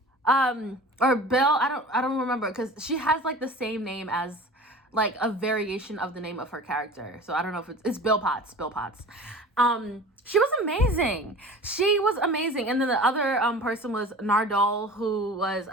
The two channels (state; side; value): normal; both; correlation 0.39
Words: or Bill, I don't remember, because she has like the same name as like a variation of the name of her character. So I don't know if it's Bill Potts. She was amazing. And then the other person was Nardole, who was,